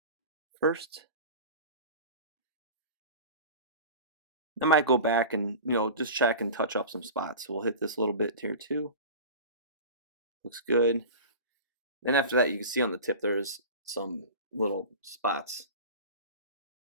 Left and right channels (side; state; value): both; inverted; correlation -0.33